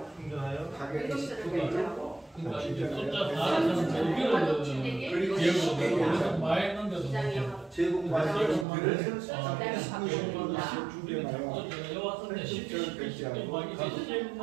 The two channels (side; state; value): left; drops out; at 8.7 s